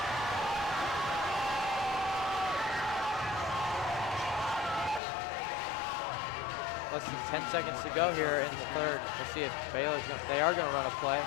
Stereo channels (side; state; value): right; drops out; at 5.0 s